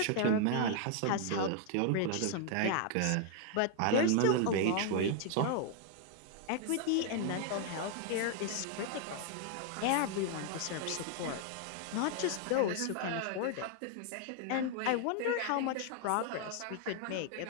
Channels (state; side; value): different; both; correlation 0.00